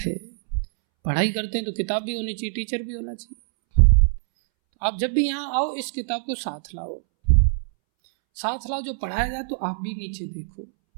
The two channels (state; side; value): silent; left; 63 dB below the other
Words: पढ़ाई करते हैं तो किताब भी होनी चाहिए, टीचर भी होना चाहिए। तो आप जब भी यहाँ आओ इस किताब को साथ लाओ, साथ लाओ, जो पढ़ाया जाए तो आप भी नीचे देखो